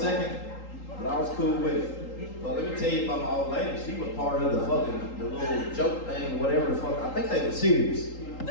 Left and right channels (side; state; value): right; late; 3.8 ms